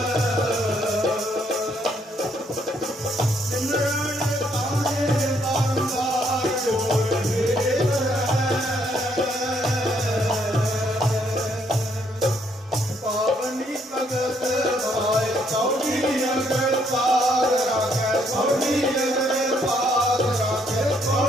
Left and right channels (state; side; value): normal; both; correlation 0.70